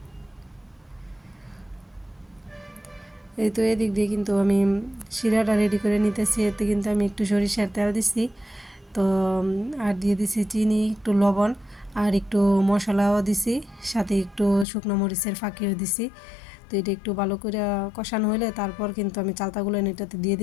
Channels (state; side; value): drops out; right; at 14.7 s